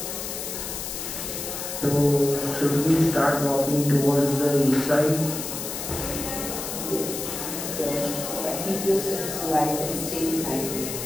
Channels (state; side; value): noise; left; hiss, 6 dB below the sound